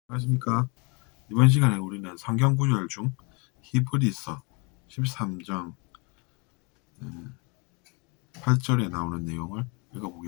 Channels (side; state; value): right; quieter; 31.5 dB